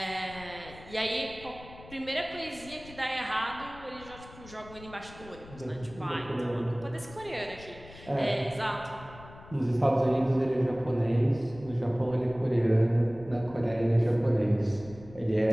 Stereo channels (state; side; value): noise; left; rumble, 18 dB below the sound